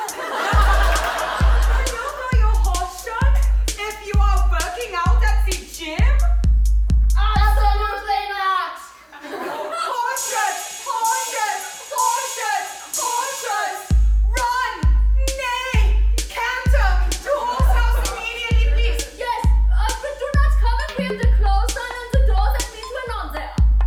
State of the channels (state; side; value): identical; both; correlation 1.00